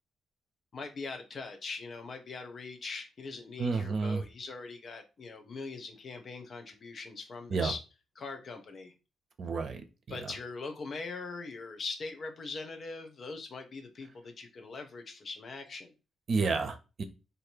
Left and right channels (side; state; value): both; normal; correlation 0.81